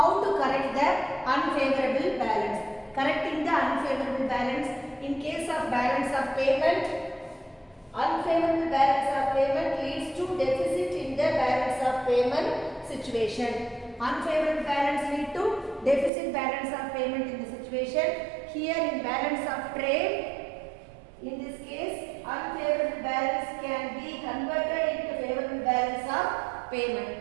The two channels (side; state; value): left; drops out; at 16.1 s